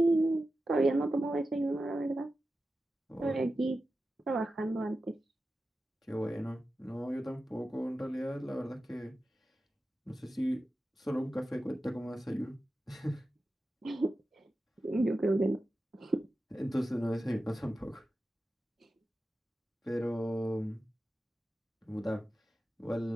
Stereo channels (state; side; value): normal; both; correlation 0.92